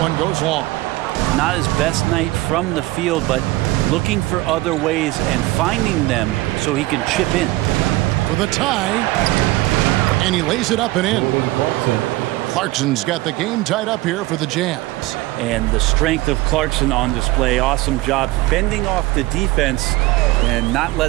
goes long. Not his best night from the field, but looking for other ways and finding them so he can chip in. For the tie, and he lays it up and in. Clarkson's got the game tied up here for the Jazz. And the strength of Clarkson on display. Awesome job fending off the defense and not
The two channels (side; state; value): left; quieter; 19.3 dB